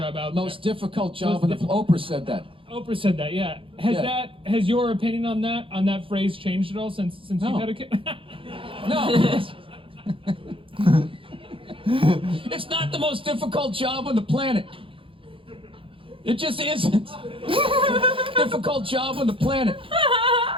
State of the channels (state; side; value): late; left; 0.25 ms